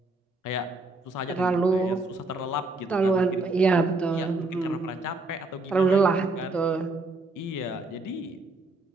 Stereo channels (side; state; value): left; quieter; 3.2 dB